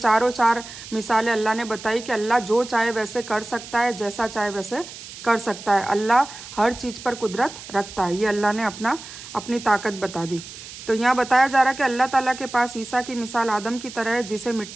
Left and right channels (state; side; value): noise; right; hiss, 14 dB below the sound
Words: 4 मिसालें अल्लाह ने बताई कि अल्लाह जो चाहे वैसे कर सकता है, जैसा चाहे वैसे कर सकता है। अल्लाह हर चीज़ पर कुदरत रखता है। ये अल्लाह ने अपनी ताकत बता दी। तो यहाँ बताया जा रहा है कि अल्लाह ताला के पास ईसा की मिसाल आदम की तरह है, जिसे